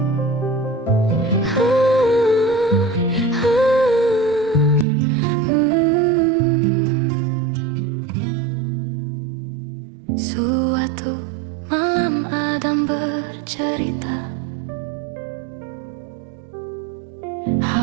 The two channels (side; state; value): left; drops out; at 4.9 s